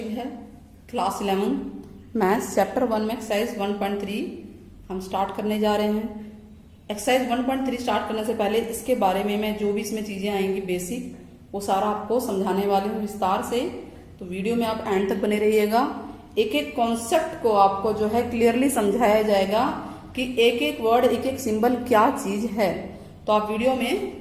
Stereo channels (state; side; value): identical; both; correlation 1.00